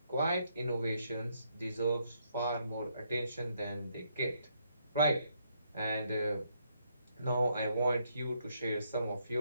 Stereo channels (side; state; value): both; inverted; correlation -0.73